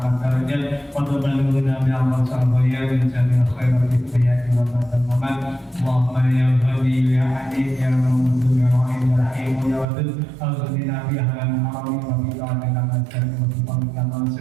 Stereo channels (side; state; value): left; drops out; at 9.9 s